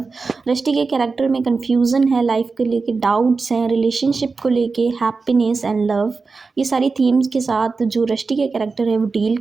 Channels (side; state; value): left; quieter; 4.3 dB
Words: Rusty के कैरेक्टर में confusion है, life को लेके डाउट्स हैं, रिलेशनशिप को लेके हैप्पीनेस एंड लव, ये सारी थीम्स के साथ जो रस्टी के कैरेक्टर है वो डील